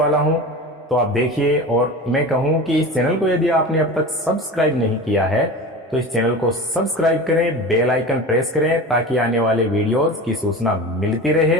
हूँ। तो आप देखिए, और मैं कहूँ कि इस चैनल को यदि आपने अब तक सब्सक्राइब नहीं किया है तो इस चैनल को सब्सक्राइब करें, बेल आइकन प्रेस करें ताकि आने वाले वीडियोस की सूचना मिलती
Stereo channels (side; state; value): both; normal; correlation 0.32